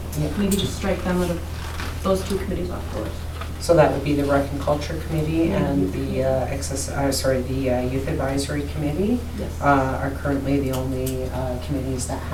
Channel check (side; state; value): both; identical; correlation 1.00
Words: maybe just strike them out of those two committees off the list. So that would be the Rec and Culture Committee and the Youth Advisory Committee Yes. are currently the only committees that